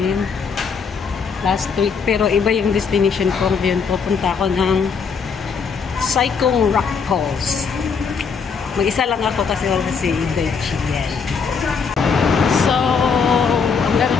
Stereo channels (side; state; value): right; quieter; 5.7 dB